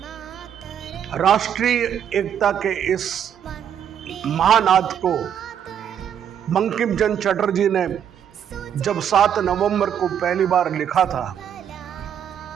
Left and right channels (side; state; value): left; quieter; 9.0 dB